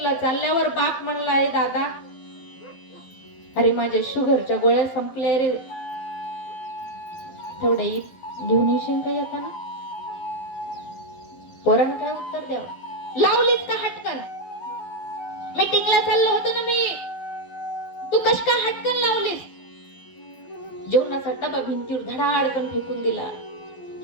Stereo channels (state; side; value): late; right; 12 ms